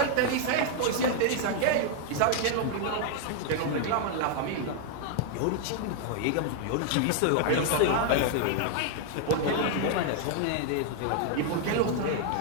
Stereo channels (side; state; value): both; different; correlation 0.00